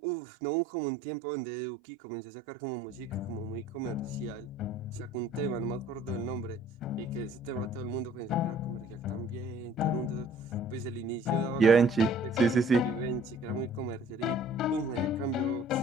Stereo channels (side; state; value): both; normal; correlation 0.53